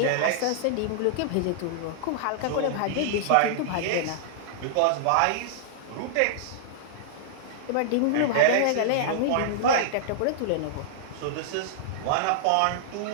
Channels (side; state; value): both; different; correlation -0.01